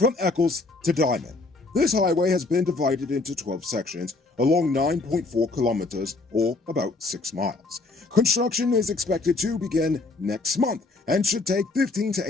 Eccles to Diamond. This highway has been divided into 12 sections along 9.4 kilometers, or about 6 miles. Construction is expected to begin next month and should take 15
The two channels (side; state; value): right; quieter; 3.4 dB